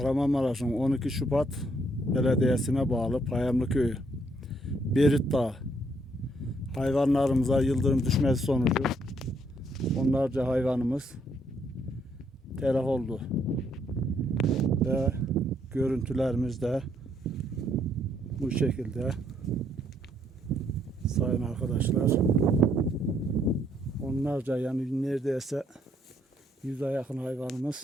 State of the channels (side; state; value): both; normal; correlation 0.70